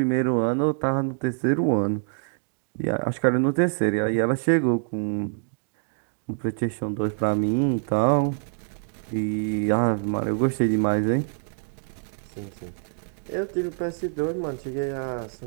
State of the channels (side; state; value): left; silent; digital silence